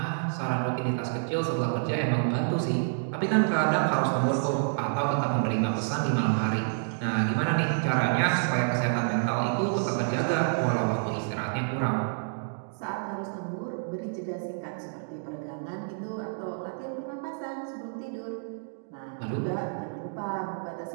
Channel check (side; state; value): left; silent; digital silence